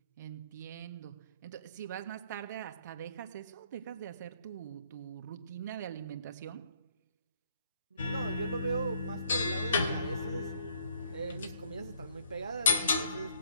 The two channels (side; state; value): both; inverted; correlation -0.64